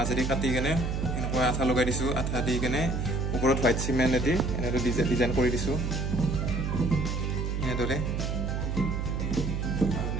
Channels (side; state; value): right; noise; hum, 1 dB below the sound